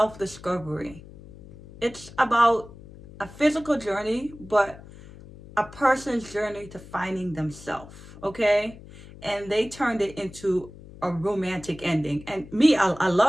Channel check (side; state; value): left; noise; hum, 18 dB below the sound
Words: It's about a physical journey, but a person's journey to finding themselves, okay? And they turned it into a romantic ending. And me, I